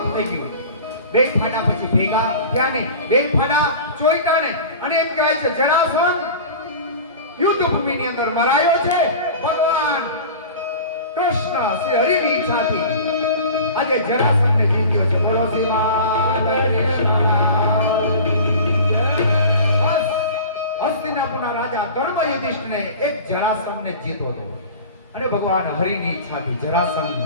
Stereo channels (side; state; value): both; inverted; correlation -0.37